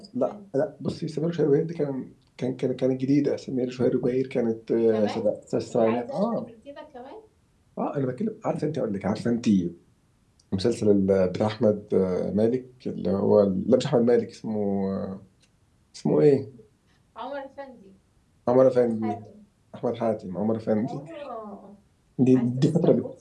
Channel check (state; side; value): identical; both; correlation 1.00